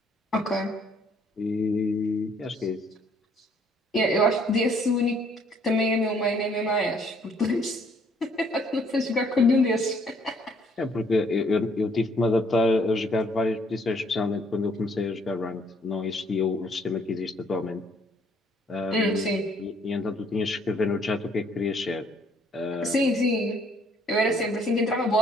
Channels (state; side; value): normal; both; correlation 0.64